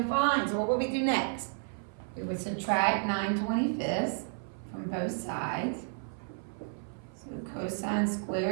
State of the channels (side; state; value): left; silent; 56 dB below the other